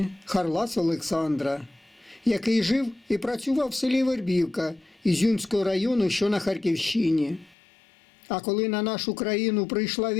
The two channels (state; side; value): drops out; right; at 7.6 s